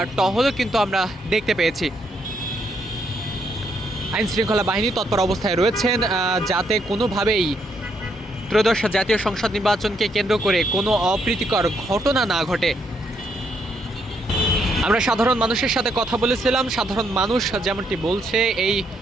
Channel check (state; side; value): normal; both; correlation 0.74